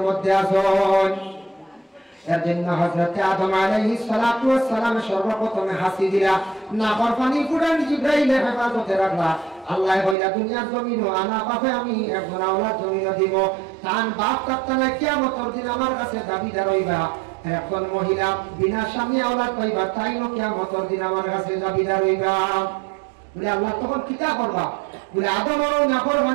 মধ্যে আছেন। এর জন্য হযরত আদম আলাইহিস সালাতু ওয়াস সালাম সর্বপ্রথমে হাসি দিলা, না পানি কোরআন জিবরাইল হেফাজতে রাখলা। আল্লাহ কইলা দুনিয়ার জমিন আনা পাবে, আমি একজন আওলাদ জমিন দিব, তান বাপ কাপ্তানা কিয়ামতের দিন আমার কাছে দাবিদার হইবা। একজন মহিলা বিনা স্বামী আওলাদ পাইবা, তাই না কিয়ামতের দিন আমার কাছে দাবিদার হইবা। বলে আল্লাহ তখন কিতা করবা? বলে আদম আর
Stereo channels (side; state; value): left; drops out; at 10.2 s